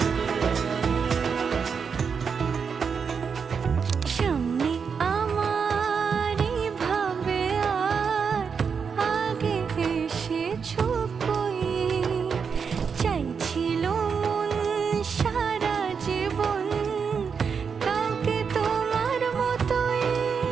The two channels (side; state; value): left; quieter; 6.1 dB